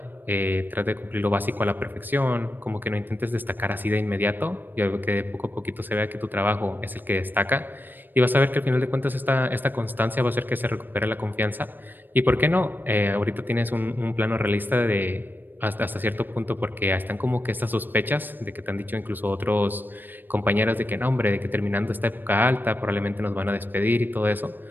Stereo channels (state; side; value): late; left; 0.092 ms